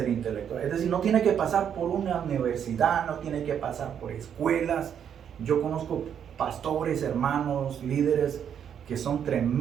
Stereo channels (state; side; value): quieter; left; 8.5 dB